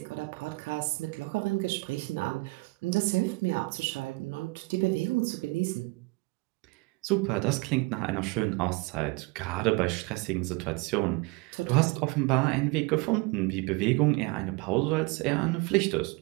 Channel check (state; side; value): quieter; left; 25.7 dB